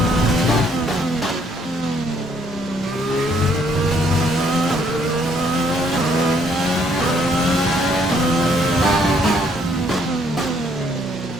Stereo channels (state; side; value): normal; both; correlation 0.67